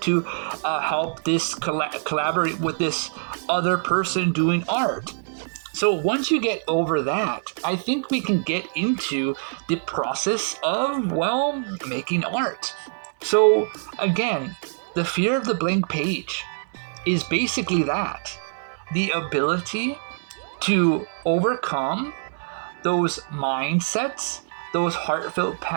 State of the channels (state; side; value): silent; left; 62 dB below the other